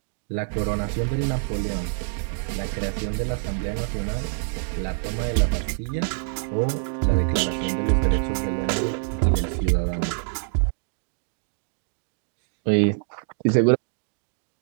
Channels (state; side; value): silent; left; digital silence